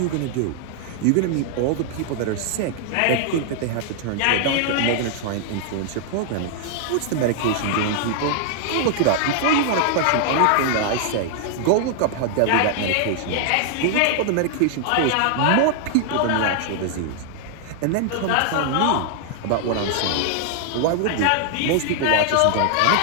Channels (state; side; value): different; both; correlation 0.00